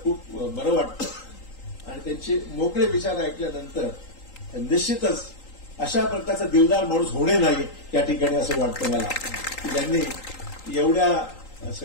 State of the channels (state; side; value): late; right; 3.8 ms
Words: खूप बरं वाटतं आणि त्यांचे मोकळे विचार ऐकल्यानंतर निश्चितच अशा प्रकारचा दिलदार माणूस होणे नाही या ठिकाणी असं वाटतं मला, की ज्यांनी एवढ्या